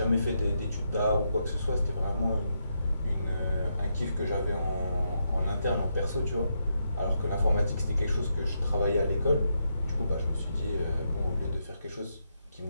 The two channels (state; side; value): inverted; both; correlation -0.81